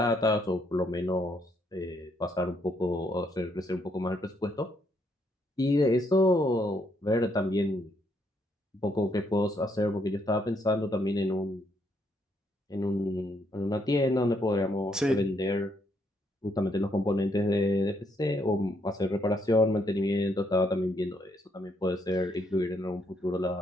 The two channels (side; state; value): both; normal; correlation 0.73